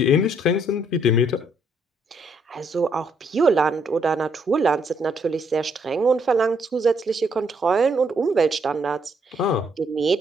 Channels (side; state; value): both; normal; correlation 0.71